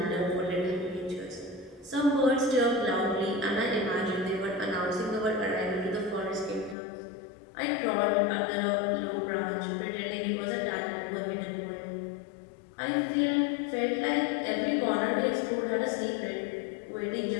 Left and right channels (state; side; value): drops out; right; at 6.8 s